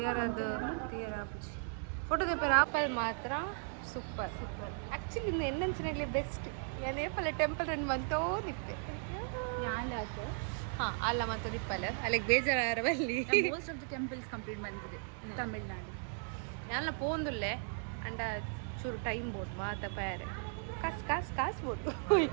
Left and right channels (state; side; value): silent; left; 53 dB below the other